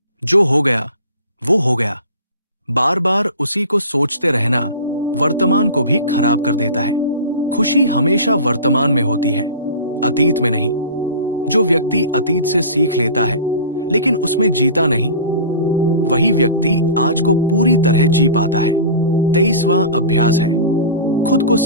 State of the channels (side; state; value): both; inverted; correlation -0.37